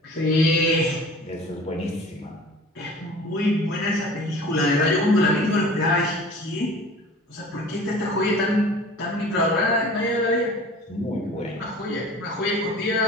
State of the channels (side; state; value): both; normal; correlation 0.43